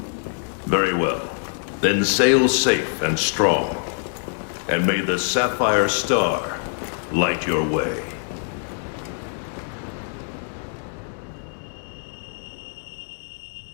Very well. Then sail safe and strong, and may the Sapphire Star light your way.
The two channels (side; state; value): right; silent; 57 dB below the other